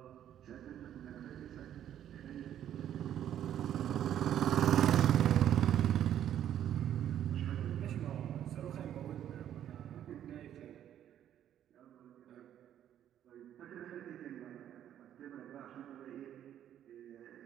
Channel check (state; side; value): quieter; left; 10.7 dB